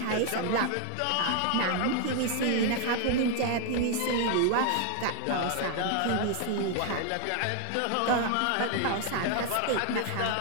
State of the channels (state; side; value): different; both; correlation 0.00